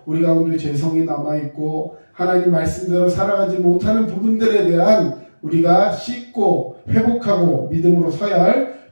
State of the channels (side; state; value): both; inverted; correlation -1.00